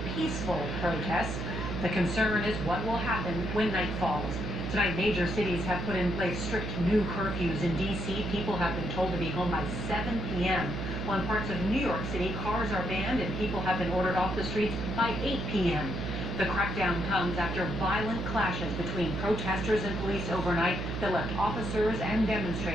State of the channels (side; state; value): right; noise; hum, 4 dB below the sound